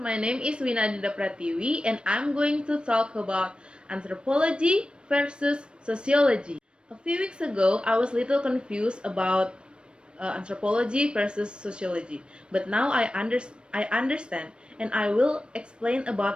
name is Winadita Pratiwi and I'm going to talk about anthropology versus sociology. A few weeks ago, I was a little confused about anthropology versus sociology, but now I understand and I will explain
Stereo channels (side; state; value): left; late; 0.055 ms